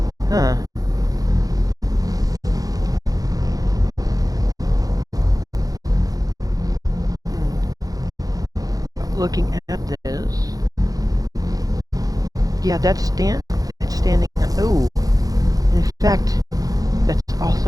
Huh. Looking at this... Yeah, it's standing... Oh! In fact, that's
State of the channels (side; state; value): left; late; 0.18 ms